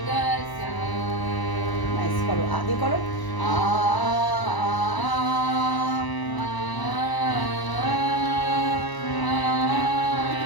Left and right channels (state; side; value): late; right; 1.0 ms